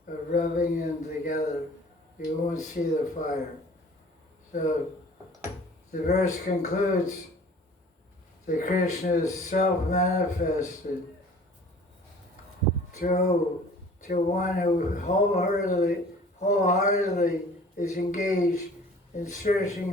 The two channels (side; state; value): both; normal; correlation 0.48